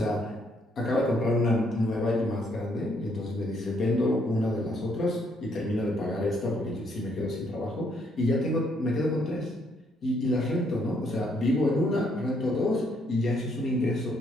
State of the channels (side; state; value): both; normal; correlation 0.71